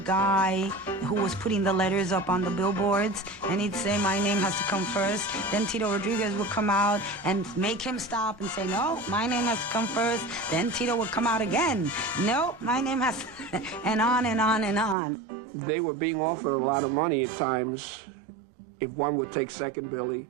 who was putting the letters up on the billboards, and he'd say, my name has to come first. Then Tito Rodríguez would come out and make him stop and say, no, my name has to come first. Then Tito would come out again. No, my name has to... and on and on and on. They were being offered a lot of money at times if one would take second billing,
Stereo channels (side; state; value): left; drops out; at 15.0 s